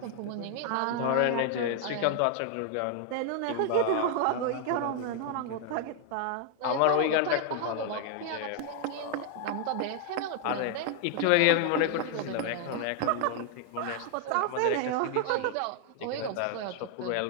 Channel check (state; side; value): different; both; correlation 0.00